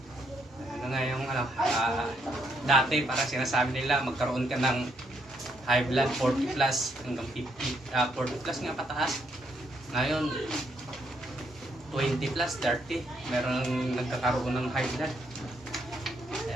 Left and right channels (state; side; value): normal; both; correlation 0.75